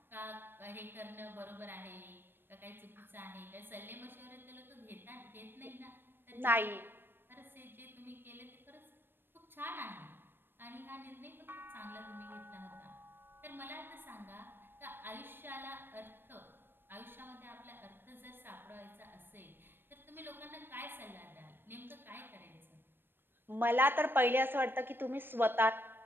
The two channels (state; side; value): late; left; 0.098 ms